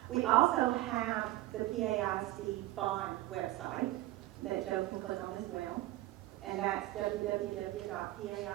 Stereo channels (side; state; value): left; quieter; 17.0 dB